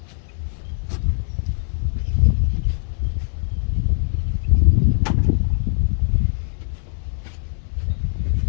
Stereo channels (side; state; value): right; silent; 65 dB below the other